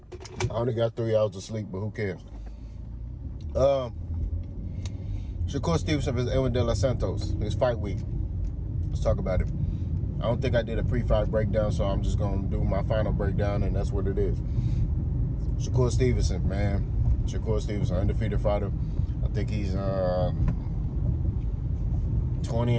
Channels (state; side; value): identical; both; correlation 1.00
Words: only got 3 hours of sleep, but who cares? Shakur Stevenson versus Edwin de los Santos. It's fight week. Let's talk about it. I don't think I did a pre-fight breakdown, so I'm just going to do my final breakdown, and that's what it is. Shakur Stevenson, man. Shakur Stevenson, undefeated fighter. I think he's